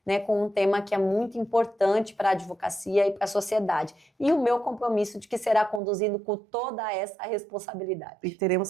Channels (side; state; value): left; drops out; at 5.8 s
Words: né, com um tema que é muito importante para a advocacia e para a sociedade. E o meu compromisso de que será conduzido com toda essa responsabilidade. E